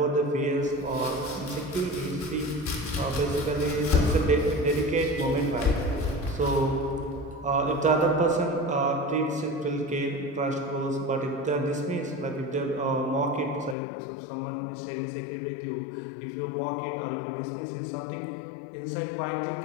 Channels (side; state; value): right; drops out; at 13.8 s